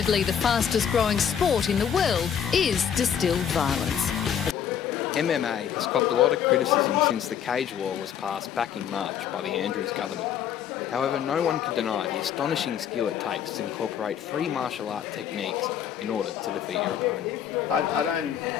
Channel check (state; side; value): quieter; right; 8.7 dB